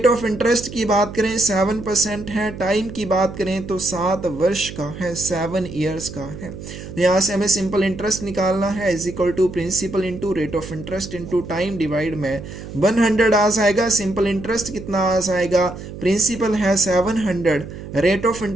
ऑफ इंटरेस्ट की बात करें 7% है। टाइम की बात करें तो 7 वर्ष का है, 7 years का है। तो यहाँ से हमें सिंपल इंटरेस्ट निकालना है, is equal to principal into rate of interest into time divide में 100 आ जाएगा। सिंपल इंटरेस्ट कितना आ जाएगा, प्रिंसिपल है 700, रेट ऑफ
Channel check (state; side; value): noise; right; hum, 12 dB below the sound